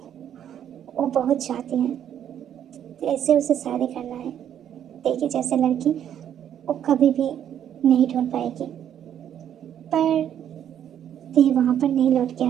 वो बहुत चाहती हैं, ऐसे उसे शादी करना है। ते की जैसे लड़की वो कभी भी नहीं ढूंढ पाएगी। पर ते वहाँ पर नहीं लौट के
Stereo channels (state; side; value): quieter; left; 9.8 dB